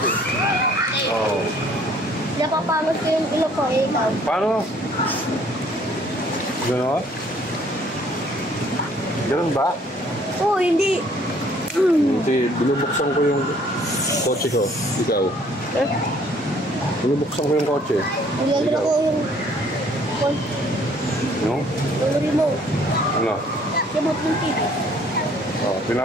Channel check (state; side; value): normal; both; correlation 0.59